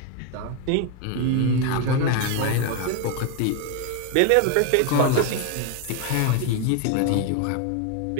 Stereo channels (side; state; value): both; different; correlation 0.01